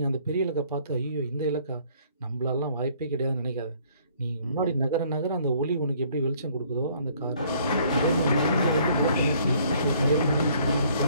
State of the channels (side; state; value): both; inverted; correlation -0.60